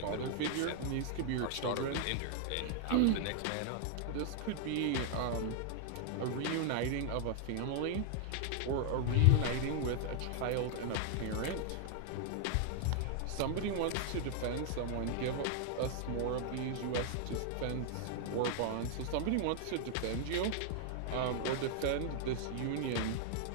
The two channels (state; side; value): different; both; correlation 0.00